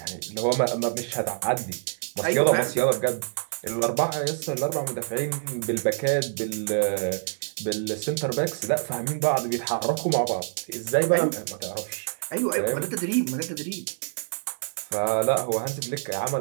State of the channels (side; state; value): left; silent; digital silence